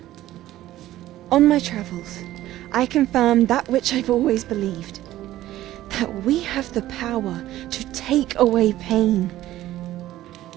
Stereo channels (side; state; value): left; quieter; 14.5 dB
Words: On my travels, I confirmed that which I've always believed. That we have the power to take away pain.